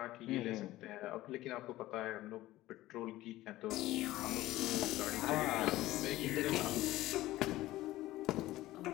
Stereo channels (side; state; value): right; quieter; 16.5 dB